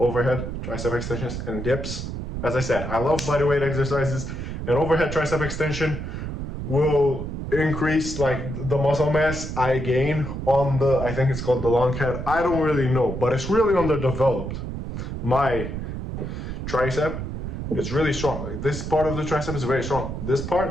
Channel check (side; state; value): right; noise; rumble, 5 dB below the sound